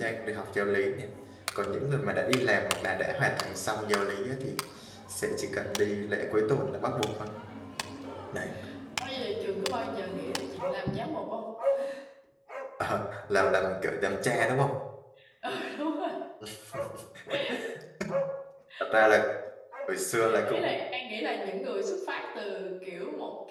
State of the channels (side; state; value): both; identical; correlation 1.00